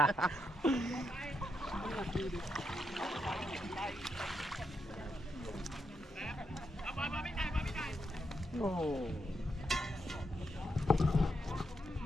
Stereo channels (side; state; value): both; normal; correlation 0.82